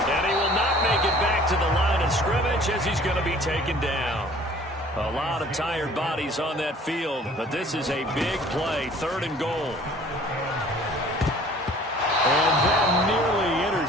and he will not make it back to the line of scrimmage as he's going to be taken down. A lot of tired bodies on that field, but this is a big play, third and goal. And that nearly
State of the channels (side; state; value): both; normal; correlation 0.51